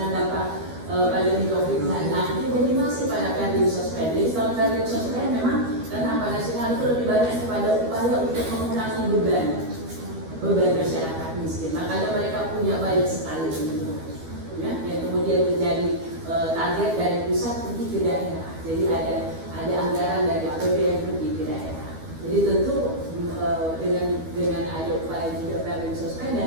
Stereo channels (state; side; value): late; left; 12 ms